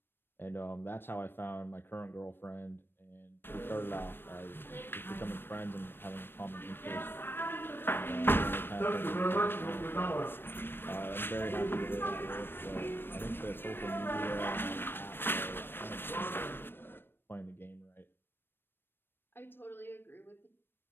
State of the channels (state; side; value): late; right; 0.099 ms